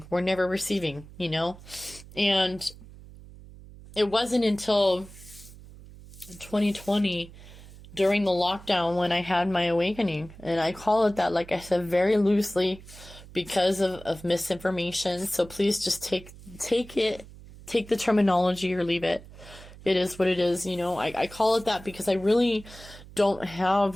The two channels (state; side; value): noise; right; hum, 18 dB below the sound